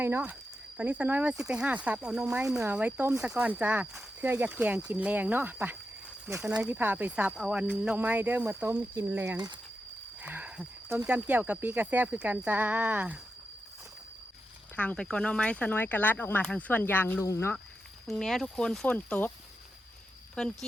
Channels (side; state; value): both; normal; correlation 0.88